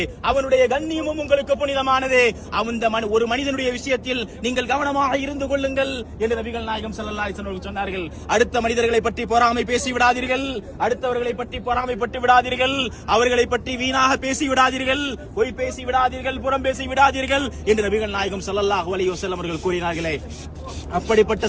அவனுடைய கண்ணியமும் உங்களுக்கு புனிதமானது. ஒரு மனிதனுடைய விஷயத்தில் நீங்கள் கவனமாக இருந்து கொள்ளுங்கள் என்று நபிகள் நாயகம் ஸல்லல்லாஹு அலைஹி வஸல்லம் சொன்னார்கள். அடுத்த மனிதர்களை பற்றி பொறாமை பேசி விடாதீர்கள், அடுத்தவர்களை பற்றி பொறாமைப்பட்டு விடாதீர்கள், அவர்களை பற்றி வீணாக பேசி விடாதீர்கள், பொய் பேசி விடாதீர்கள், புறம் பேசி விடாதீர்கள் என்று நபிகள் நாயகம் ஸல்லல்லாஹு அலைஹி வஸல்லம் அவர்கள் கூறினார்களே. அப்படிப்பட்ட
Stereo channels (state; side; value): identical; both; correlation 1.00